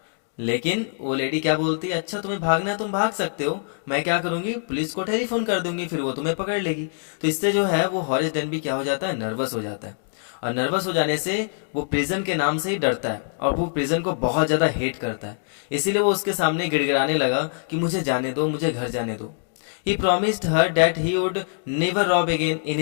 लेकिन वो लेडी क्या बोलती है, अच्छा तुम्हें भागना है तुम भाग सकते हो, मैं क्या करूंगी, पुलिस को टेलीफोन कर दूंगी, फिर वो तुम्हें पकड़ लेगी। तो इससे जो है वो हॉरिस डेनबी क्या हो जाता है, नर्वस हो जाता है, और नर्वस हो जाने से वो प्रिजन के नाम से ही डरता है और वो प्रिजन को बहुत ज्यादा हेट करता है। इसीलिए वो उसके सामने गिड़गिड़ाने लगा कि मुझे जाने दो, मुझे घर जाने दो। He promised her that he would never rob again in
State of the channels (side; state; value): right; silent; 63 dB below the other